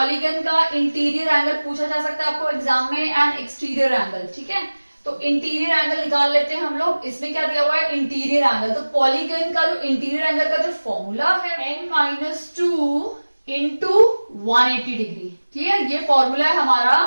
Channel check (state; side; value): inverted; both; correlation -1.00